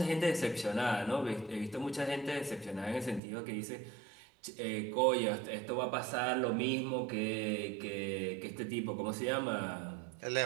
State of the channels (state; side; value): drops out; left; at 3.2 s